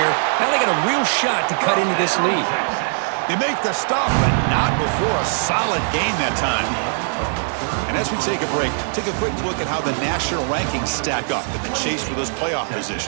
Now they got a real shot to cut into this lead. They make the stop, but not before a solid gain that time. And as we take a break, take a quick look at how the national rankings stack up in the chase for those playoff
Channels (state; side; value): silent; left; digital silence